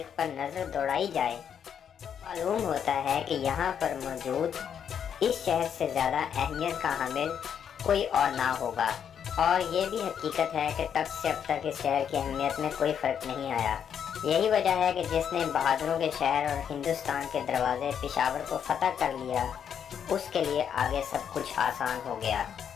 پر نظر دوڑائی جائے تو معلوم ہوتا ہے کہ یہاں پر موجود اس شہر سے زیادہ اہمیت کا حامل کوئی اور نہ ہوگا، اور یہ بھی حقیقت ہے کہ تب سے اب تک اس شہر کی اہمیت میں کوئی فرق نہیں آیا۔ یہی وجہ ہے کہ جس نے بہادروں کے شہر اور ہندوستان کے دروازے پشاور کو فتح کر لیا، اس کے لیے آگے سب کچھ آسان ہو گیا۔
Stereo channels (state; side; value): quieter; right; 8.2 dB